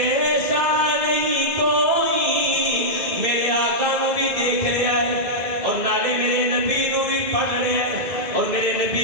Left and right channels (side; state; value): left; late; 2.8 ms